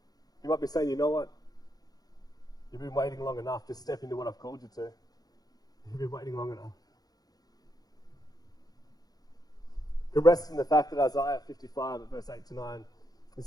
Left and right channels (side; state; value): right; late; 0.19 ms